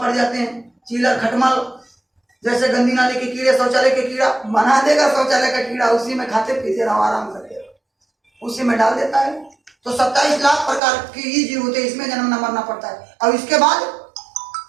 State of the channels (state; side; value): drops out; left; at 10.8 s